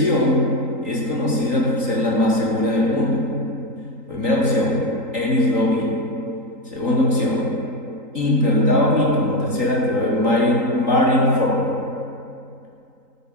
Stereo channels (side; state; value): left; late; 3.8 ms